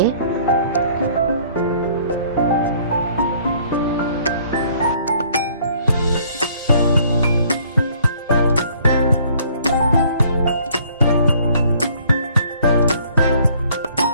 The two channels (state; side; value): inverted; both; correlation -0.59